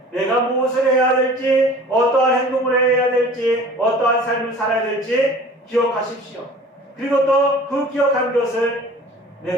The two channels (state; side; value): normal; both; correlation 0.45